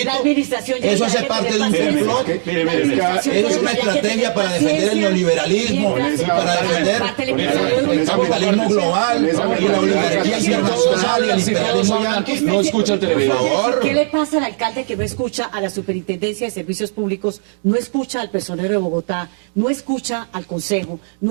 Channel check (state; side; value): silent; left; digital silence